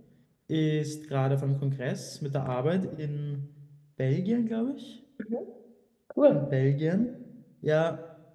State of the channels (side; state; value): both; identical; correlation 1.00